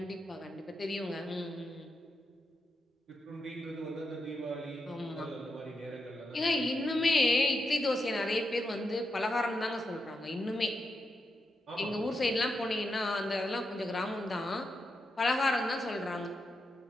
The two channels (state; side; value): normal; both; correlation 0.85